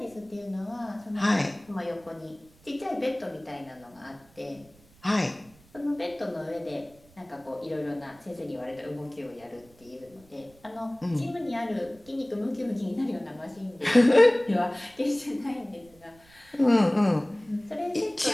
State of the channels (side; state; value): right; noise; rumble, 28 dB below the sound